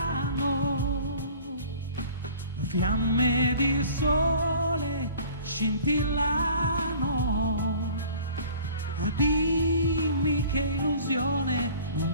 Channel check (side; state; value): both; inverted; correlation -0.47